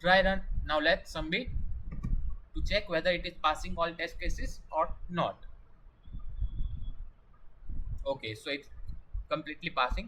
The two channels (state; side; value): identical; both; correlation 1.00